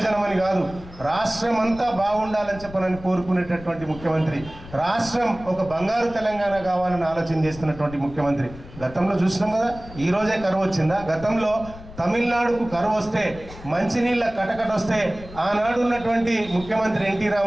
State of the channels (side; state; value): left; noise; rumble, 17 dB below the sound